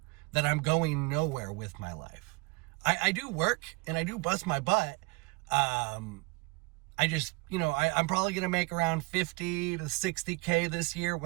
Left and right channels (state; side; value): quieter; left; 27.2 dB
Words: that I'm going nowhere with my life. I do work and I do bust my butt. I just, I'm probably going to make around 50 to 60K this year